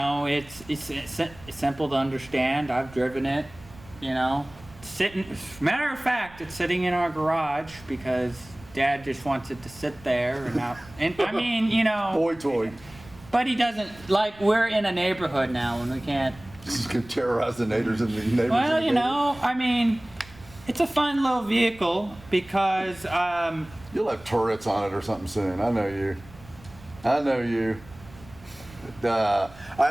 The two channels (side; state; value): right; noise; rumble, 21 dB below the sound